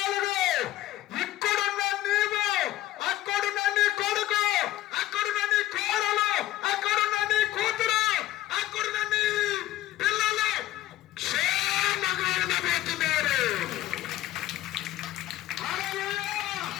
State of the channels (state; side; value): quieter; right; 14.8 dB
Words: ఇక్కడున్న నీవు, అక్కడున్న నీ కొడుకు, అక్కడున్న నీ కోడలు, అక్కడున్న నీ కూతురు, అక్కడున్న నీ పిల్లలు క్షేమంగా ఉండబోతున్నారు.